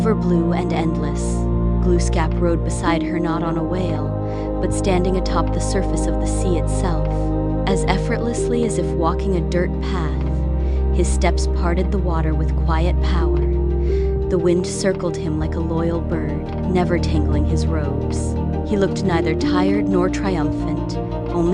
blue and endless. Glooskap rode beside her, not on a whale, but standing atop the surface of the sea itself. As effortlessly as if walking a dirt path, his steps parted the water with quiet power. The wind circled him like a loyal bird, never tangling his robes. He looked neither tired nor triumphant,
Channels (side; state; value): both; identical; correlation 1.00